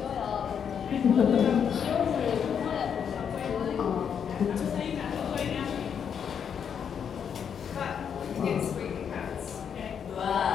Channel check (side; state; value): right; quieter; 7.7 dB